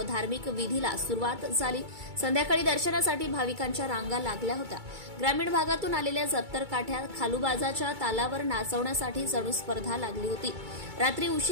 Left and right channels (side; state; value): left; late; 2.3 ms